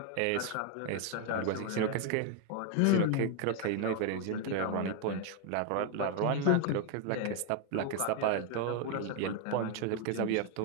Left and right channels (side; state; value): both; different; correlation 0.01